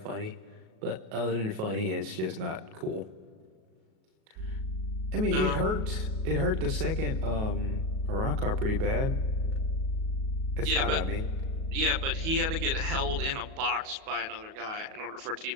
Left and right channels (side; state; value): left; late; 37 ms